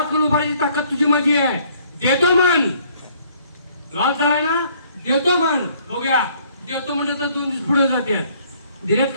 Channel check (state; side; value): inverted; both; correlation -0.61